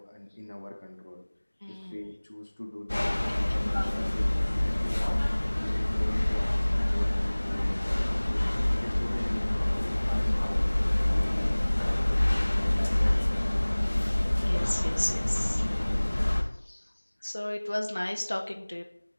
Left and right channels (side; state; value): both; inverted; correlation -1.00